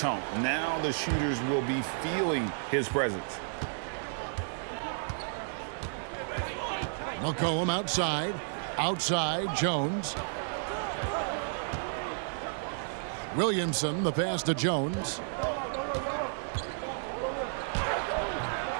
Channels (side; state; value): left; silent; digital silence